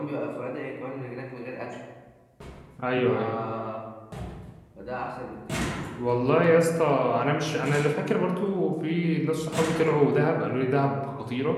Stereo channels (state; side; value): identical; both; correlation 1.00